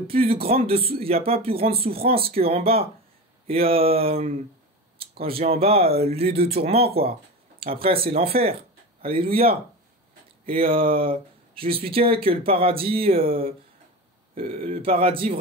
y a pas plus grande souffrance qu'en bas. Et quand je dis en bas, lieu de tourment, quoi. Après, c'est l'enfer. Alléluia. Et je lui expliquais que le paradis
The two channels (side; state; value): both; normal; correlation 0.27